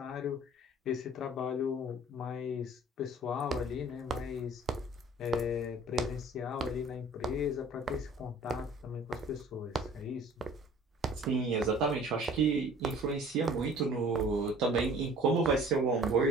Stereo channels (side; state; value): both; normal; correlation 0.49